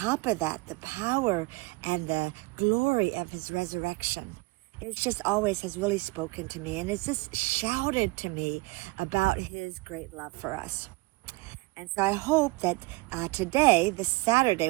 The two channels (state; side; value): quieter; left; 24.1 dB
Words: of that, the power and the glory of His resurrection. It's just always has really spoken to me, and it's just shouted to me about His great love for us. And so I hope that today, this Saturday,